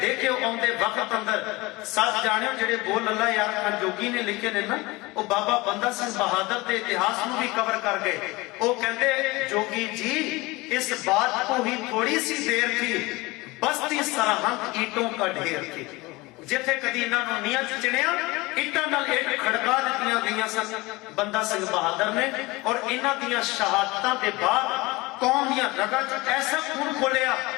देखियो आउंदे वक्त अंदर सच जाणियो जेड़े बोल अल्लाह यार खां जोगी ने लिखे ने ना, वो बाबा बंदा सिंह बहादुर के इतिहास नूं भी कवर कर गए। वो कहंदे जोगी जी इस बात को ही थोड़ी सी देर थी, बस्ती सरहंद ईंटों का ढेर थी। जिथे कदी इन्हां नूं नीहां च चिणिया ईंटां नाल ईंट खड़का दित्तियां गईयां सन बंदा सिंह बहादुर ने। और इन्हां दीयां शहादतां दे बाद कौम दीयां रगां च ऐसा खून खोलिया,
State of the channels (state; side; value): quieter; right; 22.5 dB